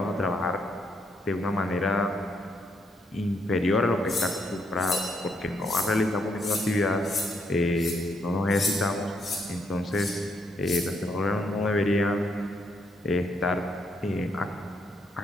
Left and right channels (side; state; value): both; normal; correlation 0.75